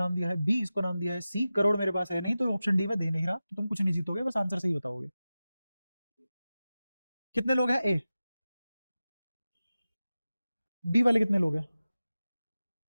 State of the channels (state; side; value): inverted; both; correlation -0.95